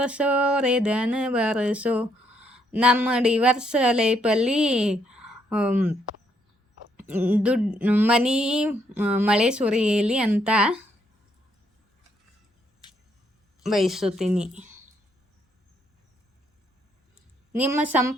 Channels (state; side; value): normal; both; correlation 0.73